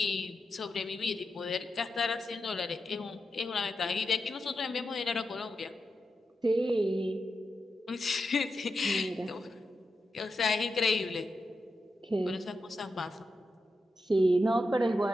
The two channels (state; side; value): normal; both; correlation 0.88